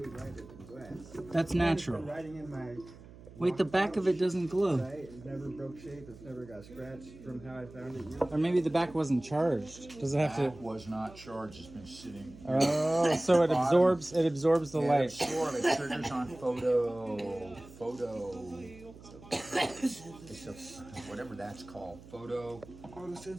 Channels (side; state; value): right; noise; hum, 19 dB below the sound